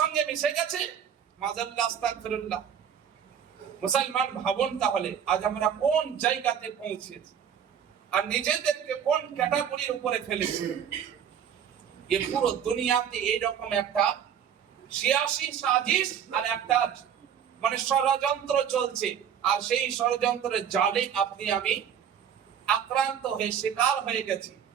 মিশে গেছে। মাযাল্লাহ, আস্তাগফিরুল্লাহ। মুসলমান ভাবুন তাহলে আজ আমরা কোন জায়গাতে পৌঁছেছি আর নিজেদেরকে কোন ক্যাটাগরির উপরে ফেলেছি। এই পুরো দুনিয়াতে এইরকম একটা সিয়াসি সাজিশ আর একটা মানে ষড়যন্ত্র চলছে, আর সেই ষড়যন্ত্রের জালে আপনি আমি আক্রান্ত হয়ে শিকার হয়ে গেছি,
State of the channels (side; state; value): left; quieter; 8.5 dB